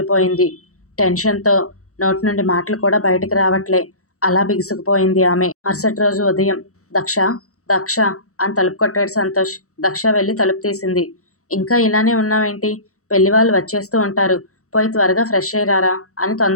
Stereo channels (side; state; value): right; late; 0.65 ms